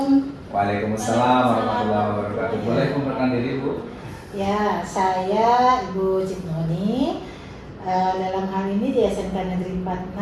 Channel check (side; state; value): both; identical; correlation 1.00